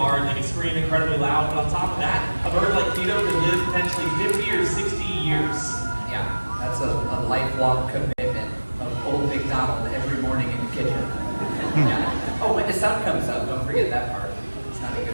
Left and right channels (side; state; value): both; inverted; correlation -1.00